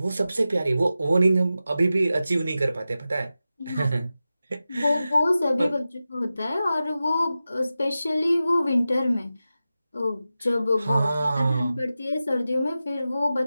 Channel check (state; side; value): inverted; both; correlation -0.93